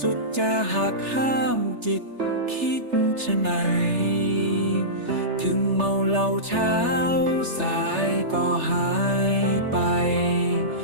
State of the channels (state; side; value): late; left; 3.3 ms